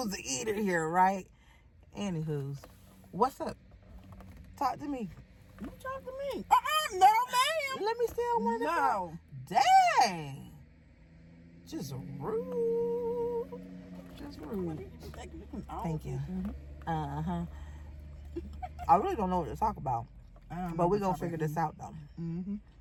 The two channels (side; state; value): both; identical; correlation 1.00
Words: the eater here, right? Anywho's. What's up? Talk to me. You talk to me. No, ma'am. Let me steal one. No. Dang. Just rude. Just rude. Thank you. Uh-huh. I really don't know what to talk about. But we're going to figure this out, though. Mm-hmm.